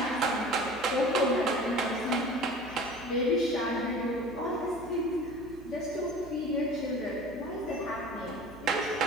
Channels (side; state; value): right; noise; hum, 19 dB below the sound